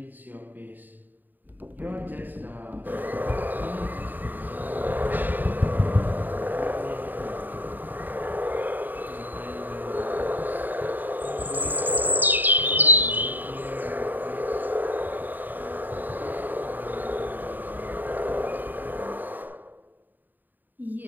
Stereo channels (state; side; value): late; left; 0.088 ms